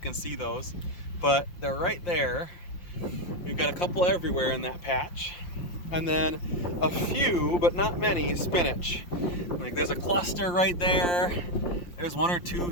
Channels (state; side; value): late; right; 5.7 ms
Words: see those, but they're right there. We've got a couple everywhere in that patch. And then a few, but not many, spinach. Like there's a cluster right there. There's 1 or 2